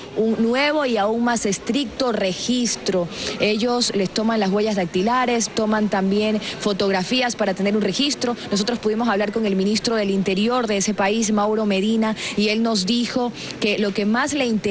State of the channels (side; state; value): both; identical; correlation 1.00